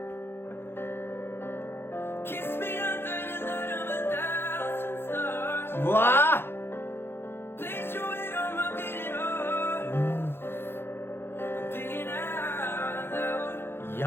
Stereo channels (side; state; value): right; late; 0.11 ms